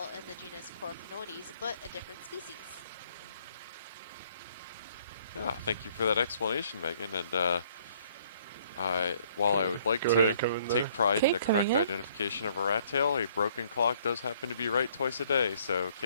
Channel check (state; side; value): inverted; both; correlation -0.62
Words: in the genus Coryphonoides, but a different species. Yeah, thank you for that explanation, Megan. And while I would like to take pride in the correct identification of a rat tail, a broken clock does happen to be right twice a day, so